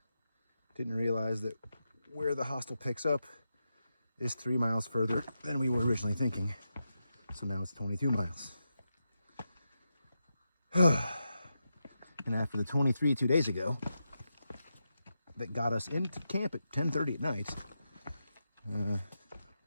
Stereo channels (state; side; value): inverted; both; correlation -0.87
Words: didn't realize that where the hostel picks up is 3 miles further than we were originally thinking. So now it's 22 miles. And after the 23 2 days ago that got us into camp at 10:30 at night,